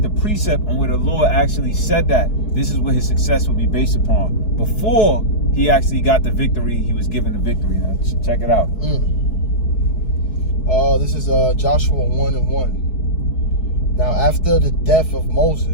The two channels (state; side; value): late; right; 4.7 ms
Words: the precept on where the Lord actually said that this is what his success will be based upon. Before he actually got the victory, he was given the victory. Now, check it out. This is Joshua 1:1. Now, after the death of